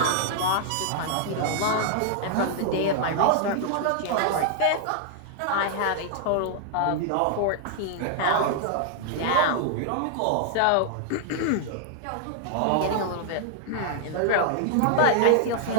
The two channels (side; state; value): both; different; correlation -0.01